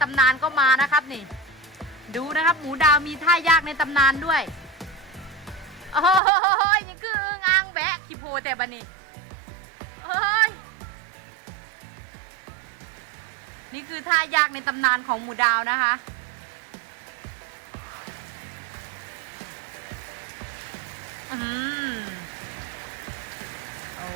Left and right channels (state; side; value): drops out; left; at 6.2 s